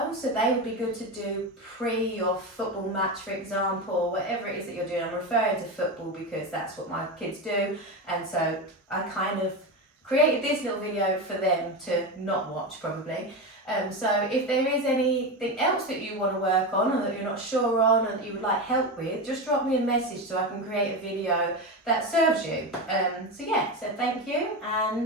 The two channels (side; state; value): both; normal; correlation 0.18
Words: so they would be good to do pre your football match, for example, whatever it is that you're doing. I'm referring to football because that's what my kids do, and so I kind of created this little video for them to not watch probably. So if there is anything else that you want to work on or that you're not sure on and that you would like help with, just drop me a message so I can create a video that serves you. So thank you